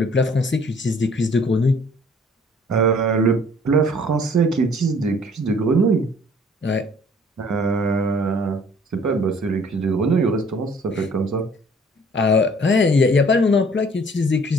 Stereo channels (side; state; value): both; normal; correlation 0.56